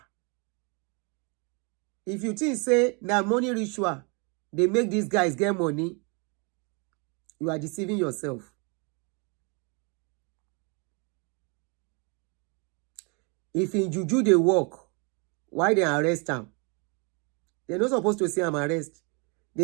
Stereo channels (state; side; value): quieter; left; 33.1 dB